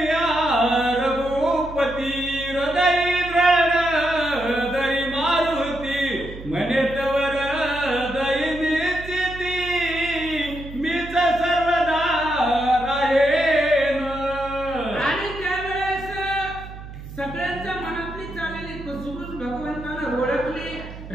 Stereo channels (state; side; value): noise; right; hum, 13 dB below the sound